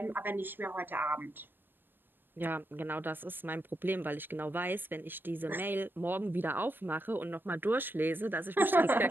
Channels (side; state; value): left; late; 0.096 ms